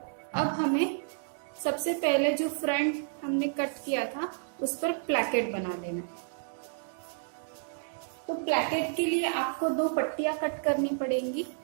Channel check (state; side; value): silent; left; digital silence